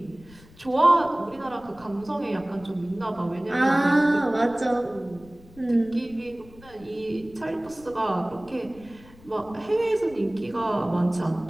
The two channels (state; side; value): noise; left; rumble, 23 dB below the sound